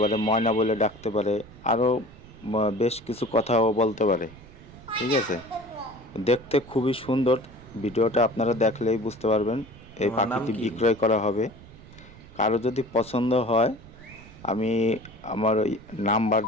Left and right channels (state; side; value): noise; right; rumble, 20 dB below the sound